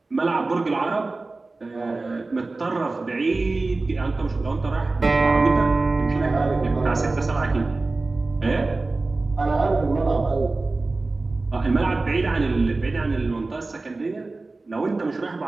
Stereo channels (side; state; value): left; quieter; 3.4 dB